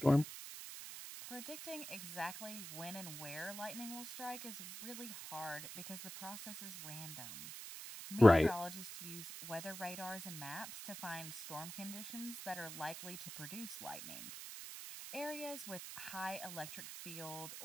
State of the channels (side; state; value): right; noise; hiss, 9 dB below the sound